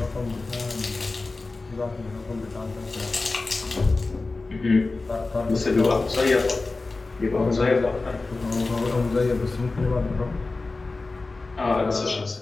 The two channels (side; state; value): right; quieter; 3.5 dB